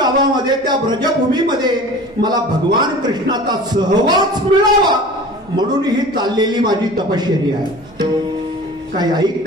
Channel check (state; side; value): noise; right; hum, 29 dB below the sound